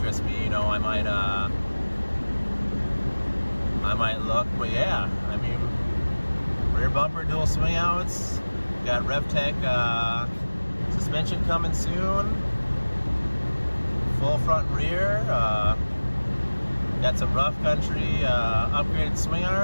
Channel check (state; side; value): inverted; both; correlation -1.00